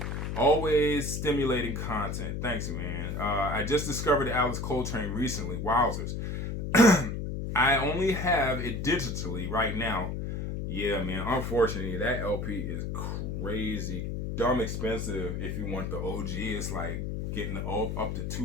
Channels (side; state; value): left; noise; hum, 3 dB below the sound